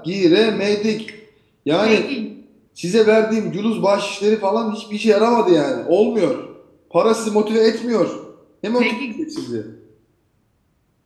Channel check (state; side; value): identical; both; correlation 1.00